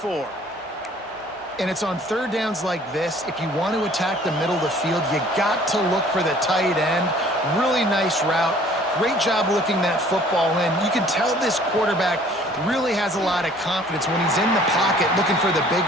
And it's on third downs like this. If you want to attack the middle of the field, you got to look for the tight end. Really nice route. Great job looking that football in. You can tell this quarterback really has a lot of confidence when he's in the pocket looking for the big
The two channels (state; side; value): normal; both; correlation 0.54